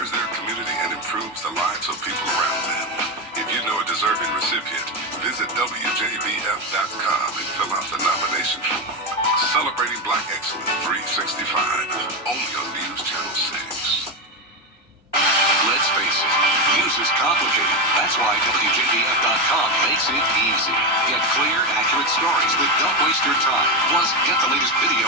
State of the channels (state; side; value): normal; both; correlation 0.12